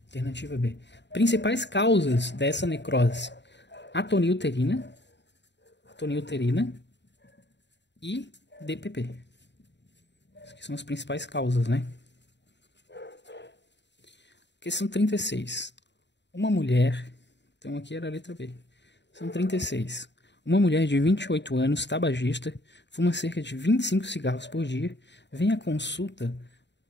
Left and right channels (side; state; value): right; late; 0.52 ms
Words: Alternativa B. Principais causas dessa necrose: atonia uterina e DPP. Essas são as principais causas, né? Questão 36. Uma mulher... Então aqui era a letra B. São 36. Uma mulher de 28 anos, tabagista, fuma cerca de 25 cigarros por dia, vem à consulta,